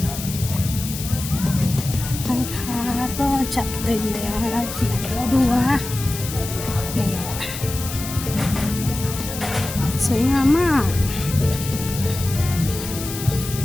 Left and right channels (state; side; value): noise; left; hiss, 9 dB below the sound